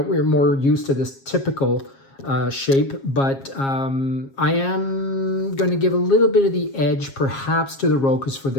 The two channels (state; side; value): late; right; 7.4 ms